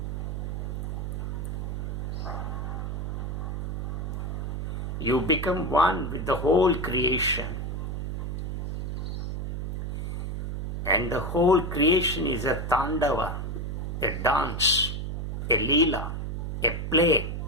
You become one with the whole creation. And the whole creation is a tandava, a dance, a leela, a play.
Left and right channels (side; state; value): right; noise; hum, 3 dB below the sound